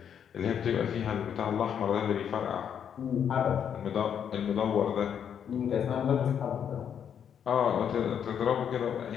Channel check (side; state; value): right; quieter; 8.3 dB